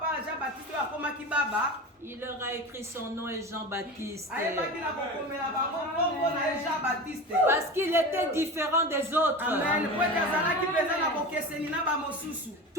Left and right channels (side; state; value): both; normal; correlation 0.29